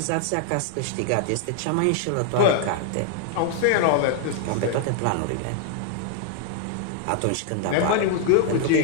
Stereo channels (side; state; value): both; different; correlation 0.00